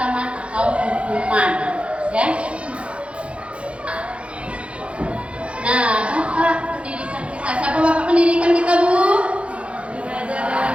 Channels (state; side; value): late; left; 0.060 ms